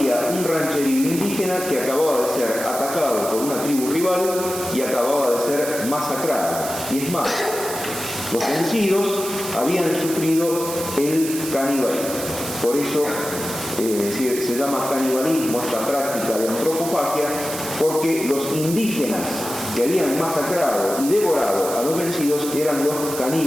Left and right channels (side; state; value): right; noise; hiss, 8 dB below the sound